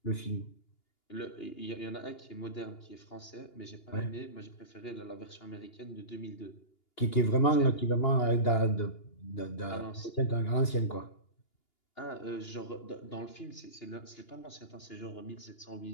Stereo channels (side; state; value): right; late; 2.8 ms